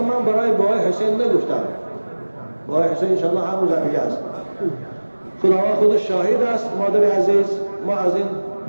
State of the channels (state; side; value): inverted; both; correlation -1.00